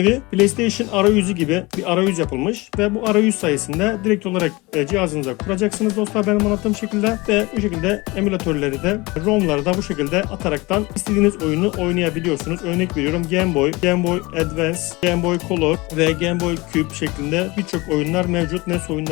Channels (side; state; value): right; quieter; 23.4 dB